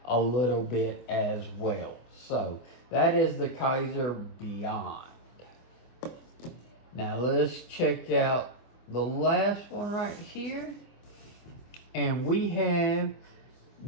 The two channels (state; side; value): late; right; 24 ms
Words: a little bit as well. So that is the Kizer Beyond. Now let's check out the last one right here, and we have